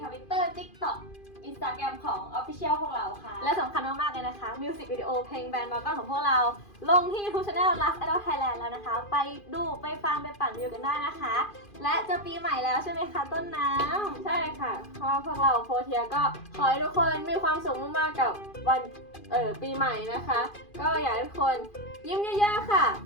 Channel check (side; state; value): right; late; 2.5 ms